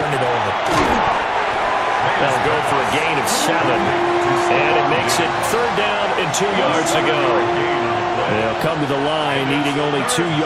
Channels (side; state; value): both; identical; correlation 1.00